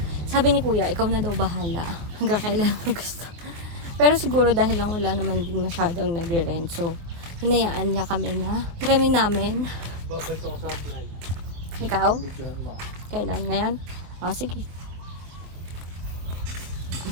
Sabi ni kuya, ikaw na daw bahala. Hanggang kailan mo gusto. Pero siguro dahil lang wala naman din masyadong nagre-rent. So, hinayaan niya kami na hiramin namin. Ikaw? Kailan ngayon? O, sige.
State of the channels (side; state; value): left; late; 24 ms